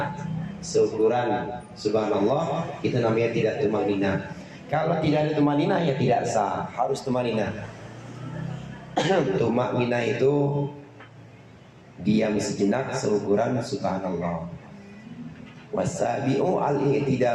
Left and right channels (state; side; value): identical; both; correlation 1.00